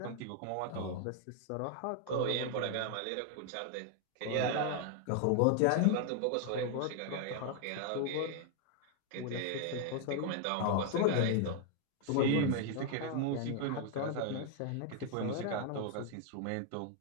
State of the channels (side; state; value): both; different; correlation 0.00